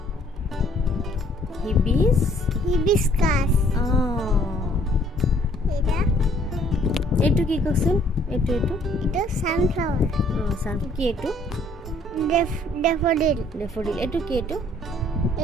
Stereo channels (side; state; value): both; normal; correlation 0.61